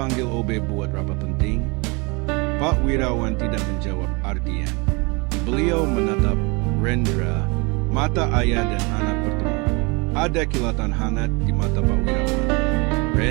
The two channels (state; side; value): quieter; left; 28.9 dB